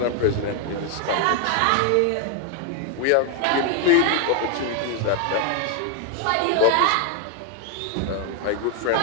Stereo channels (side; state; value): both; different; correlation 0.01